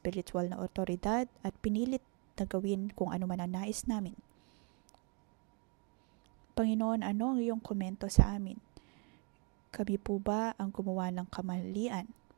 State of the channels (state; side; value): quieter; left; 35.5 dB